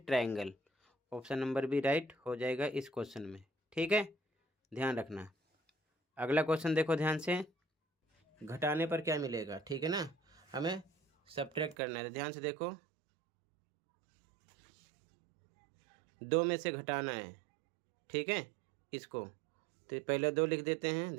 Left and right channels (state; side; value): drops out; left; at 11.8 s